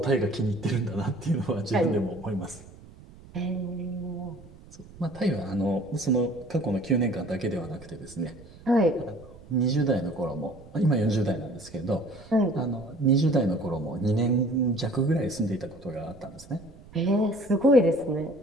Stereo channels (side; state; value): right; noise; rumble, 21 dB below the sound